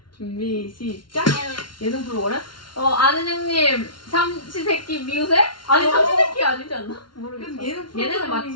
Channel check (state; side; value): late; right; 0.72 ms